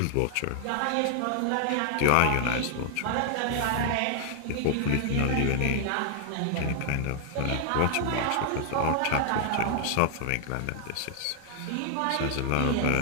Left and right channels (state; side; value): different; both; correlation 0.00